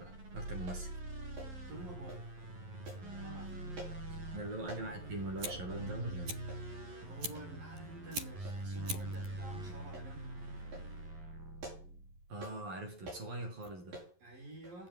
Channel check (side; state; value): left; late; 11 ms